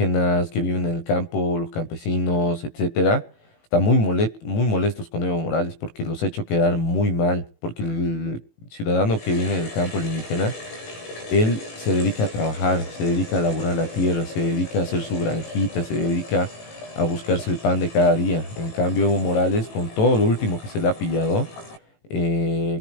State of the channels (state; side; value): late; right; 18 ms